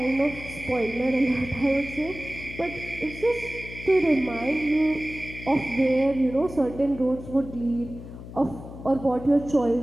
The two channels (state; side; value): noise; left; hum, 13 dB below the sound